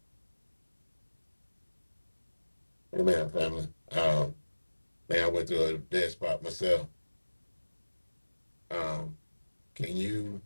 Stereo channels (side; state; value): both; inverted; correlation -1.00